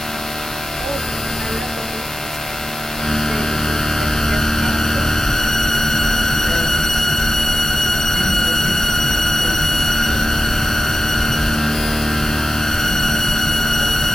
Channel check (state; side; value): normal; both; correlation 0.92